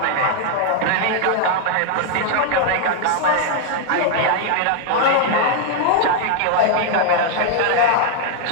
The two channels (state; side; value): different; both; correlation 0.00